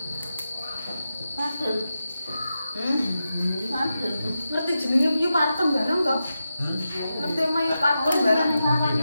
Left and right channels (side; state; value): both; inverted; correlation -0.90